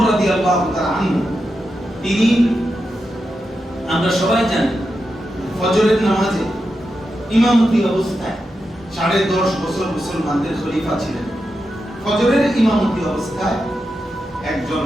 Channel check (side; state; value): both; normal; correlation 0.88